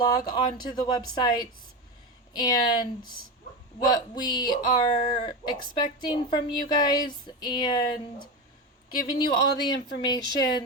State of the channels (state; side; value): normal; both; correlation 0.19